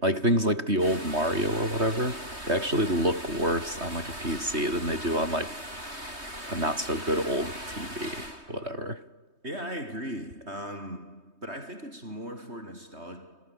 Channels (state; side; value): late; left; 3.2 ms